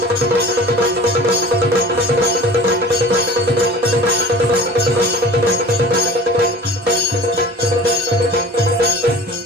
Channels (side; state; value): both; normal; correlation 0.42